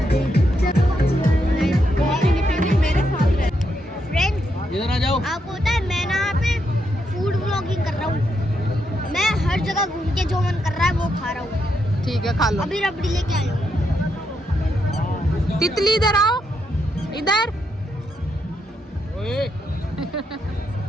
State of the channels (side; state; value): both; normal; correlation 0.80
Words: आपको पता है मैं ना यहाँ पे फूड व्लॉगिंग कर रहा हूँ। मैं हर जगह घूम के जो मन कर रहा है वो खा रहा हूँ। ठीक है, खा लो। अभी रबड़ी लेके आया हूँ। तितली इधर आओ, इधर।